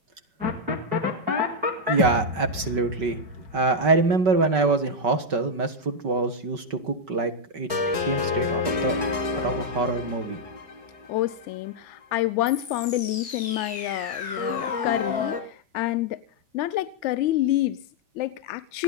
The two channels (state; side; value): late; left; 5.3 ms